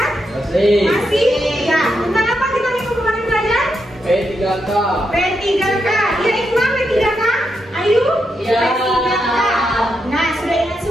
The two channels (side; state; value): both; normal; correlation 0.83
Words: Masih? Ya, tentang apa kita minggu kemarin belajar? P3K. P3K. Ya, Iqbal P3K? Ayu? Ya. P3K. Nah, sudah ingat